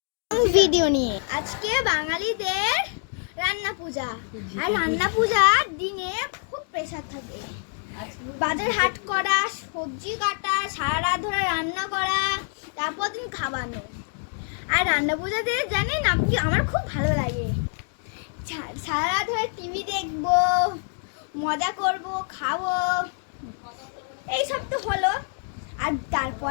ভিডিও নিয়ে। আজকে বাঙালিদের রান্না পূজা, আর রান্না পূজার দিনে খুব প্রেসার থাকে। বাজার হাট করা, সবজি কাটা, সারা রাত ধরে রান্না করা, তারপর দিন খাওয়ানো। আর রান্না পূজাতে জানেন আপনি, আমার খুব ভালো লাগে। সারা রাত ধরে টিভি দেখবো, মজা করব, খাবো, এইসব তো হলো। আর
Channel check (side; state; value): right; silent; 61 dB below the other